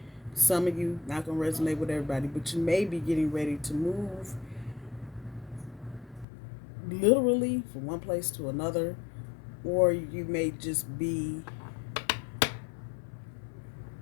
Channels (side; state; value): right; drops out; at 6.2 s